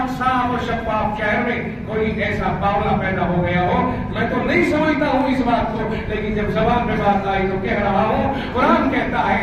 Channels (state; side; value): identical; both; correlation 1.00